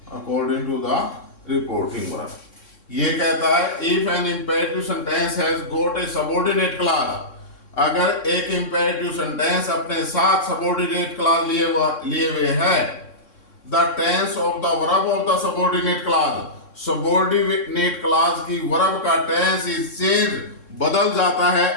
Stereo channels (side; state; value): right; late; 3.6 ms